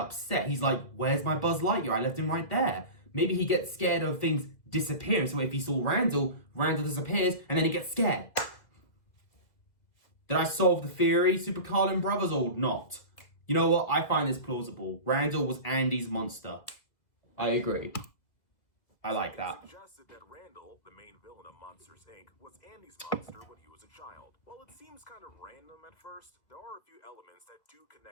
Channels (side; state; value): right; late; 2.2 ms